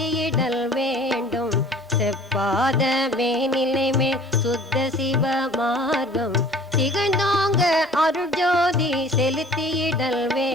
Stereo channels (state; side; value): normal; both; correlation 0.49